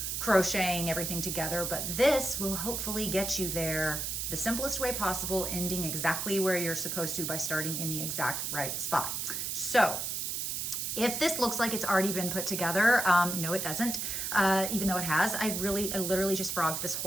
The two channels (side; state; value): right; noise; hiss, 2 dB below the sound